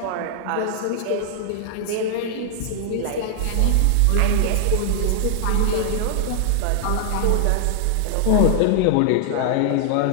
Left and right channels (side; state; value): both; different; correlation 0.00